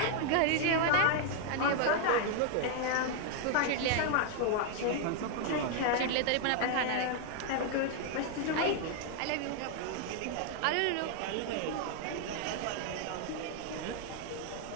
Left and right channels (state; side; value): different; both; correlation 0.00